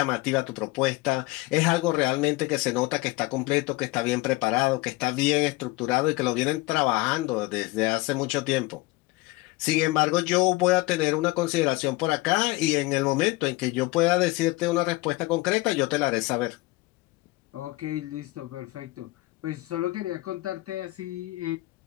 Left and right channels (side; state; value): right; quieter; 20.9 dB